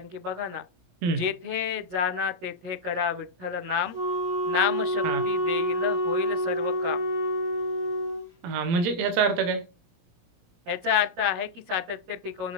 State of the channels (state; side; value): late; left; 17 ms